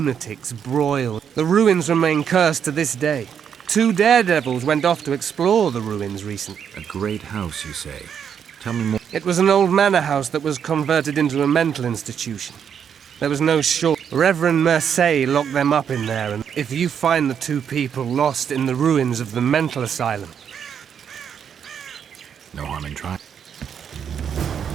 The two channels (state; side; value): quieter; left; 7.9 dB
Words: broiled. The ruins remain cursed to this day. 2 daredevils went off to explore the ruins recently. A great house, you say? Tell me more. It was an old manor house that was converted into a mental institution. There was no short. Reverend Mercier locked them up in there, and if you find the 2 people lost in the ruins of the mental asylum... No harm in trying.